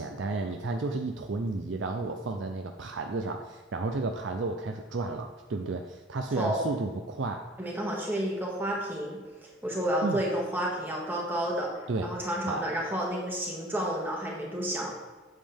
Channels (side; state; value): both; normal; correlation 0.47